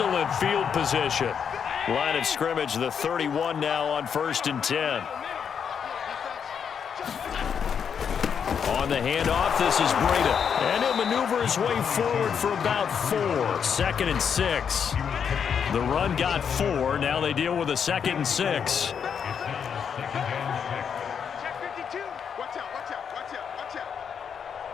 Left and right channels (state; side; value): quieter; right; 7.3 dB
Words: field position. Line of scrimmage, the 31 now on 1st and 10. On the handoff, this is Breida. And he'll maneuver his way forward for about 4. 2nd and 6. The run got 4. Now they deal with a 2nd and 6.